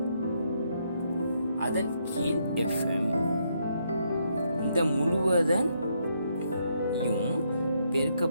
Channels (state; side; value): inverted; both; correlation -0.75